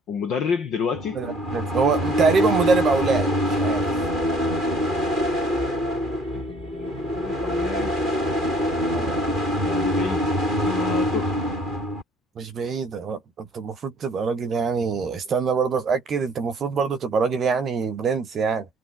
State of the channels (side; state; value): both; normal; correlation 0.58